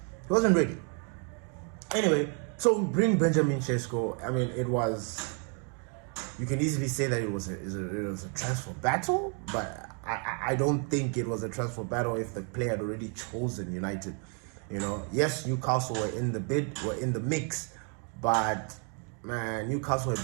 wasn't ready. Anyway, so we bring Benjamin Šeško. I mean, you can easily say that it was a transfer battle, but I don't think it was a transfer battle if the player had already chosen United. Yes, Newcastle were in the mix, but man, Newcastle have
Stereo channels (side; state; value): left; quieter; 39.4 dB